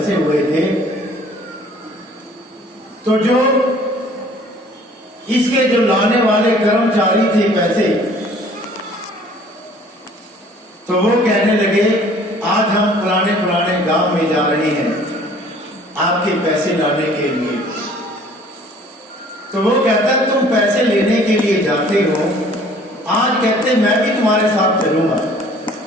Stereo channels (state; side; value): normal; both; correlation 0.54